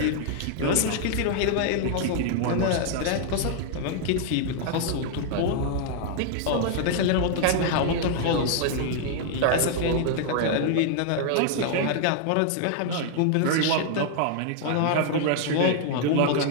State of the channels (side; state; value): both; different; correlation 0.00